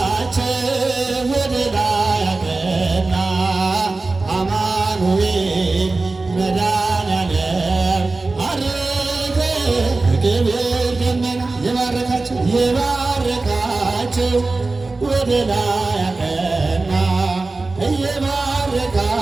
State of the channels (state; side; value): quieter; left; 3.5 dB